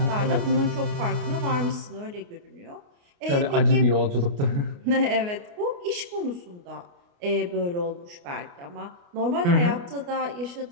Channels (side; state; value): left; late; 29 ms